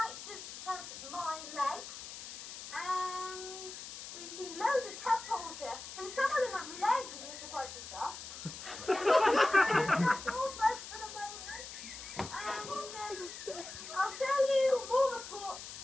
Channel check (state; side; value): noise; left; hiss, 11 dB below the sound